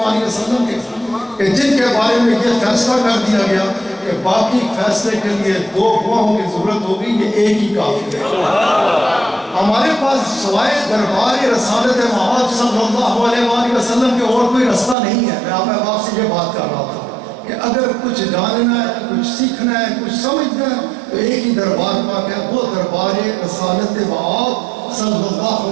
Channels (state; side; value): drops out; left; at 15.0 s